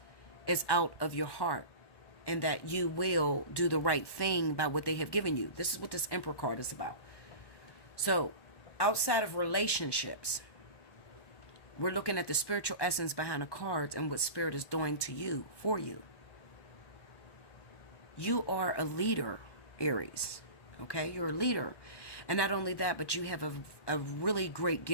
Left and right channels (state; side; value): late; right; 1.1 ms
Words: is out of your heart and that you will do the right thing by what they have given you. This is what this Emperor card is about. So outside of relationships, we're looking at the spiritual essence behind the cards and what Spirit is doing to you, for you. You are a leader, Aries. Okay? You're a leader. And not only that, but you have a really great